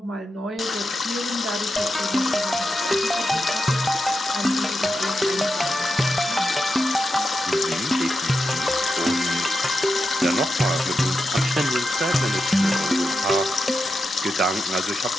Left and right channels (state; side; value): normal; both; correlation 0.88